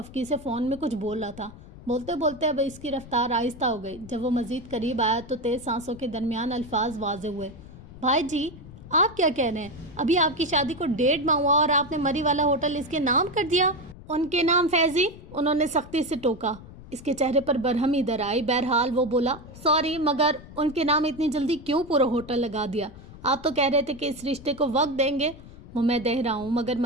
سے فون میں کچھ بول رہا تھا۔ بولتے بولتے اب اس کی رفتار آہستہ ہو گئی۔ جب وہ مزید قریب آیا تو تیز سانسوں کے درمیان الفاظ واضح ہوئے۔ بھائی جی، آپ کیا کہہ رہے ہیں؟ ابھی آپ کی شادی کو 1.5 ماہ ہوا اور آپ نے مری والا ہوٹل اس کے نام کر دیا۔ ان کے نام فیضی، انہوں نے سختی سے ٹوکا۔ اس کے چہرے پر برہمی در آئی۔ بہرحال وہ بولا، سوری، مگر ان کے نام اتنی جلدی کیوں پورا ہوٹل لگا دیا؟ آپ تو کہہ رہے تھے کہ اس رشتے کو وقت دیں گے۔ وہ میں دے رہا ہوں، مگر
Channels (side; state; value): left; noise; rumble, 17 dB below the sound